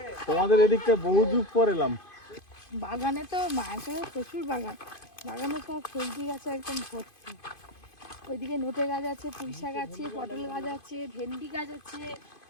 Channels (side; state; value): right; late; 2.5 ms